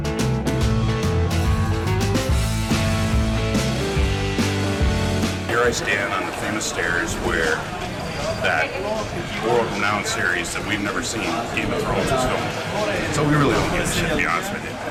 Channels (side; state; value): both; identical; correlation 1.00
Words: I stand on the famous stairs where that world-renowned series that we've never seen, Game of Thrones, is filmed. So we really don't give a shit, to be honest with you.